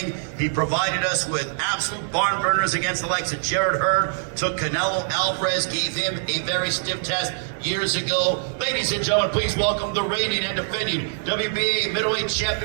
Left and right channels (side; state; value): left; silent; digital silence